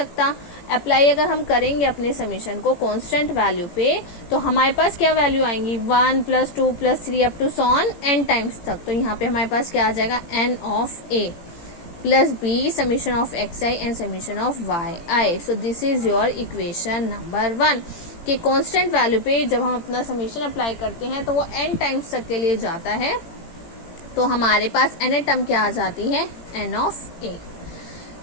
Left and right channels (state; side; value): late; right; 18 ms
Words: अप्लाई अगर हम करेंगे अपने समीशन को कांस्टेंट वैल्यू पे तो हमारे पास क्या वैल्यू आएंगी, 1 + 2 + 3 अप टू सॉन n टाइम्स तक। तो यहाँ पे हमारे पास क्या आ जाएगा, n of a plus b summation of xi and summation of yi। So this is your equation number 1 कि कांस्टेंट वैल्यू पे जब हम अपना समीशन अप्लाई करते हैं तो वो n टाइम्स तक के लिए जाता है। तो हमारे पास n टर्म क्या आ जाती है, n ऑफ a,